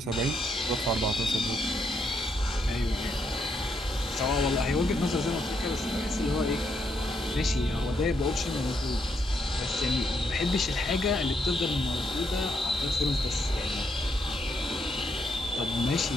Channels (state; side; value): normal; both; correlation 0.77